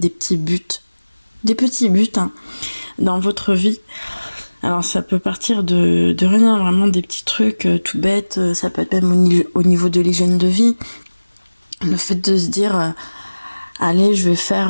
petits buts dans votre vie. Alors ça peut partir de rien, vraiment des petits trucs tout bêtes, ça peut être même au niveau de l'hygiène de vie. Le fait de se dire, allez, je vais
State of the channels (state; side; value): inverted; both; correlation -1.00